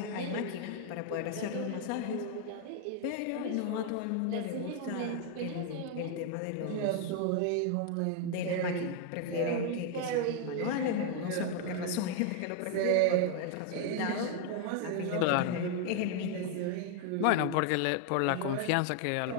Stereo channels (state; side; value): different; both; correlation 0.00